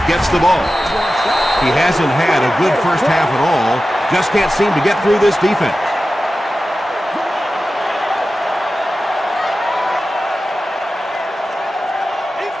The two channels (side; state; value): both; normal; correlation 0.94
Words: gets the ball. He hasn't had a good first half at all. Just can't seem to get through this defense.